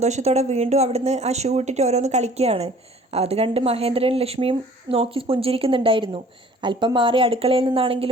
വീണ്ടും അവിടുന്ന് ആ ഷൂ ഇട്ടിട്ട് ഓരോന്ന് കളിക്കുകയാണ്. അത് കണ്ട് മഹേന്ദ്രനും ലക്ഷ്മിയും നോക്കി പുഞ്ചിരിക്കുന്നുണ്ടായിരുന്നു. അല്പം മാറി അടുക്കളയിൽ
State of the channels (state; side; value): normal; both; correlation 0.51